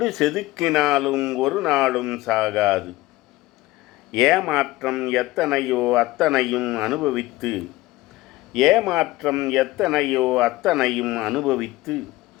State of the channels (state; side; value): quieter; right; 18.5 dB